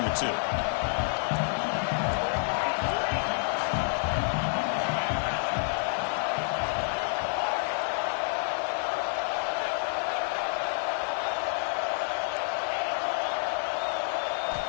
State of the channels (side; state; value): right; silent; digital silence